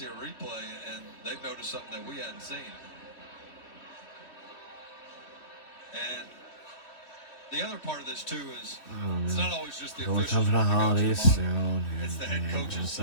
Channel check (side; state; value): right; late; 3.0 ms